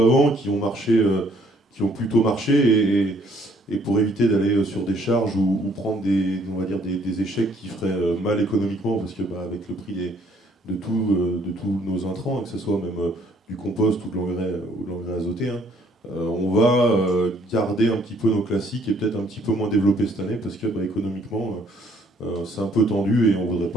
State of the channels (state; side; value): normal; both; correlation 0.63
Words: avant, qui ont marché, qui ont plutôt marché, et pour éviter d'aller sur des charges ou prendre on va dire des échecs qui feraient mal économiquement, parce que bah, avec le prix de tous nos intrants, hein, que ce soit même du compost ou de l'engrais azoté, hein, on va garder un petit peu nos classiques et peut-être un petit peu moins développer cette année, parce que bah, économiquement, c'est un peu tendu et on ne voudrait